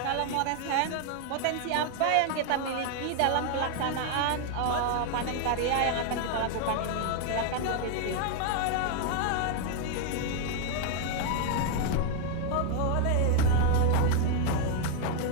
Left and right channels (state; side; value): different; both; correlation 0.00